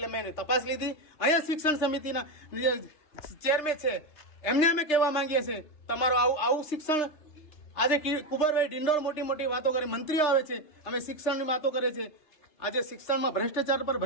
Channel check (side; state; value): right; late; 3.3 ms